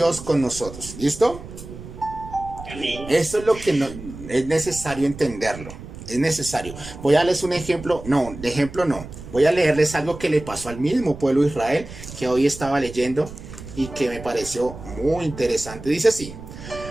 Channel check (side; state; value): right; noise; rumble, 13 dB below the sound